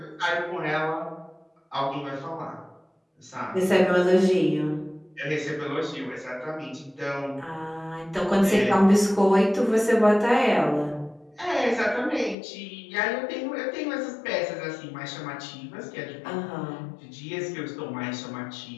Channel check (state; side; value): drops out; right; at 12.4 s